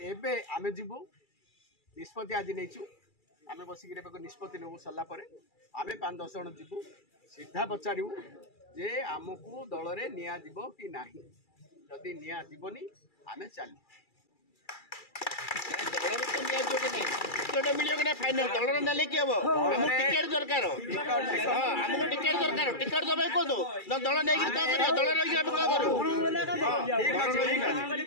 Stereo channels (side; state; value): right; late; 2.3 ms